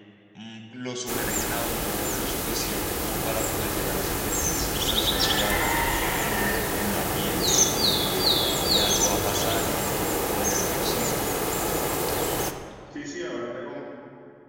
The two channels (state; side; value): identical; both; correlation 1.00